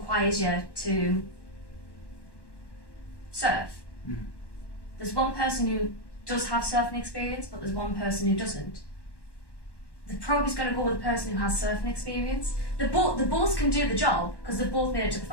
you to surf. There's one person who does have surfing experience, but there's one person who doesn't. The probe is going to go with the person who has surfing experience. The both can do the job because they've both made it to the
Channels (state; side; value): late; right; 1.1 ms